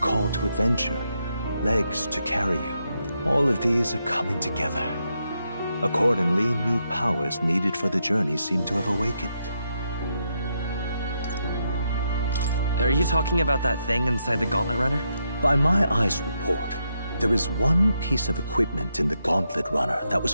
to adventure, legs to carry you. All of these are coming together. Accordingly, new powers needed for the journey seem to have awakened. Are you talking about that thing inside the Gauntlet Runner? By my eyes report, there is one piece of equipment in the Gauntlet Runner that was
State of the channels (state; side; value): inverted; both; correlation -0.81